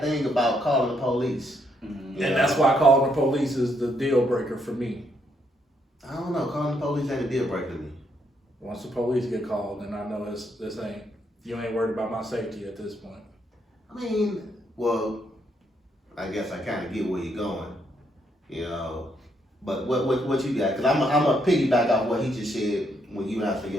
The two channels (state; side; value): normal; both; correlation 0.75